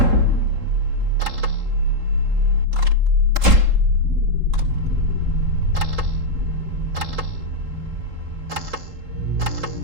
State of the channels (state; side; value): late; left; 3.7 ms